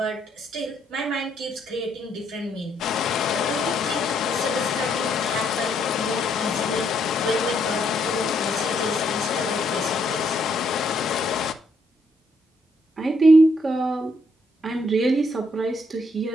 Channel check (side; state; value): both; normal; correlation 0.73